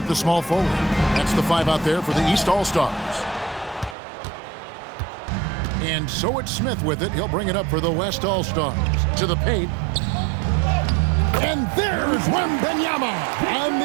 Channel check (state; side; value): drops out; left; at 4.0 s